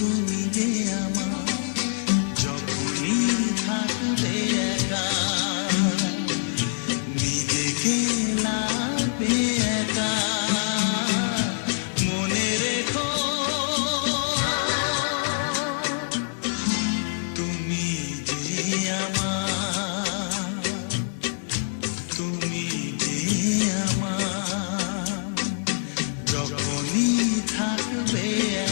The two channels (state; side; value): silent; right; digital silence